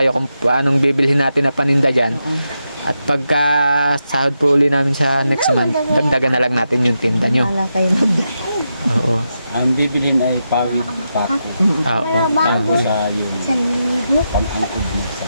kung anong bibilhin natin na paninda dyan. At pagka sahod po uli namin sa next month, dagdagan na lang natin yung tinda nyo. Wala kayo Oo. Ang bibilin ay pawid pako. Oo. Bago sa yung pang-angkod mo sa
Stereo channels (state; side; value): inverted; both; correlation -0.86